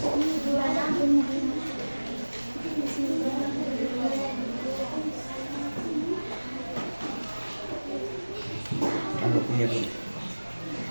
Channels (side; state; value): both; inverted; correlation -1.00